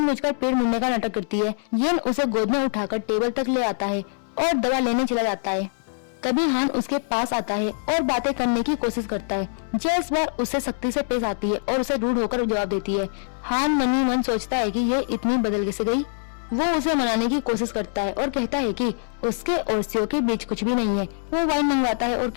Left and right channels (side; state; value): right; silent; 63 dB below the other